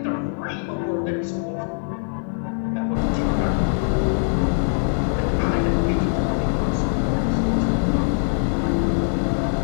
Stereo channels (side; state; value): right; silent; digital silence